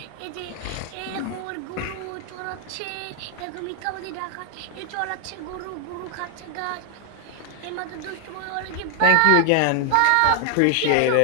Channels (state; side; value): different; both; correlation 0.00